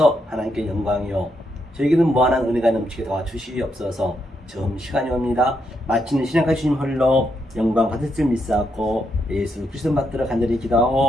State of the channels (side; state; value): both; normal; correlation 0.80